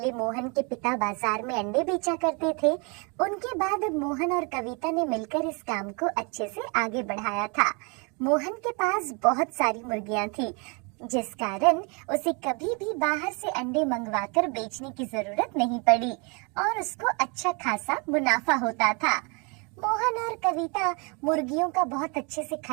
मोहन के पिता बाजार में अंडे बेचा करते थे। उनके बाद अब मोहन और कविता ने मिलकर इस काम को अच्छे से आगे बढ़ाया था। मोहन के पास बहुत सारी मुर्गियां थी, जिस कारण उसे कभी भी बाहर से अंडे मंगवाकर बेचने की जरूरत नहीं पड़ी और उसको अच्छा खासा मुनाफा होता था। मोहन और कविता मुर्गियों का बहुत अच्छे से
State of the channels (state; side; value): quieter; left; 32.5 dB